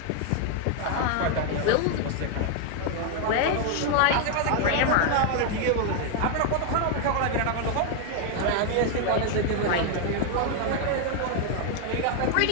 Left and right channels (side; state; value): both; different; correlation 0.00